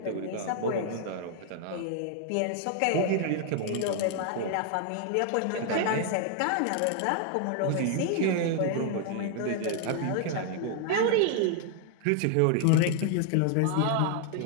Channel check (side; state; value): both; different; correlation 0.00